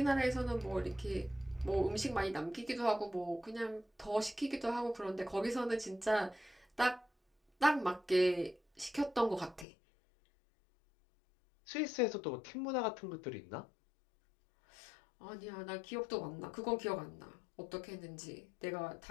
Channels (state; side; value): drops out; right; at 9.7 s